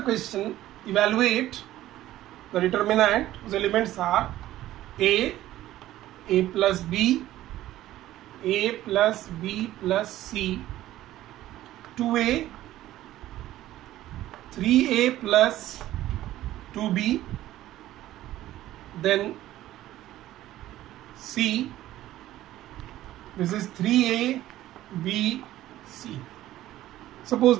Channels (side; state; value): left; quieter; 14.4 dB